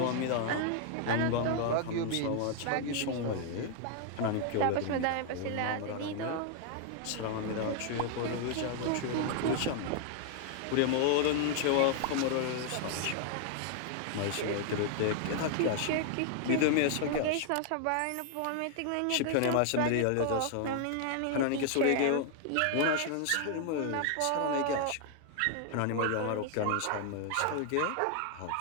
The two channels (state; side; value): different; both; correlation 0.00